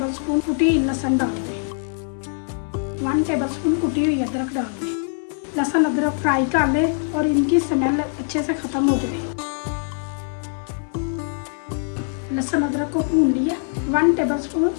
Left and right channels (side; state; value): right; silent; 64 dB below the other